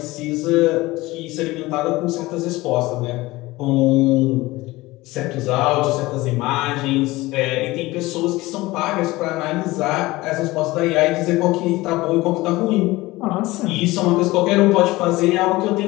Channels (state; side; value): quieter; right; 19.8 dB